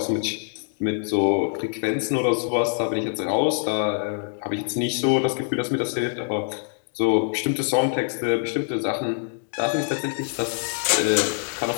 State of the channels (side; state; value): right; silent; 62 dB below the other